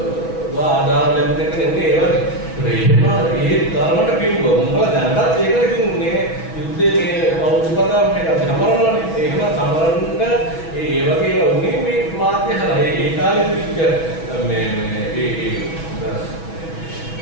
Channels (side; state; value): right; late; 6.2 ms